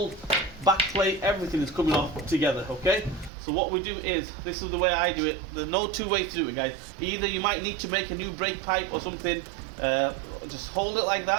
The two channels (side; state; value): left; drops out; at 3.3 s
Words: back plate, everything is coming off together, okay? So what we do is, this is the way I do it. There's no two ways to do it, guys. Either you might need to make a new brake pipe or something, just hold it like